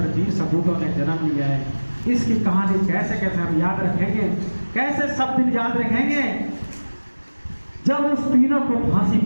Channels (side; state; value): both; inverted; correlation -1.00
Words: वीर सपूतों ने जन्म लिया है। इसकी कहानी कैसे कैसे हम याद रखेंगे, कैसे सब दिन याद रखेंगे। जब उस तीनों को फांसी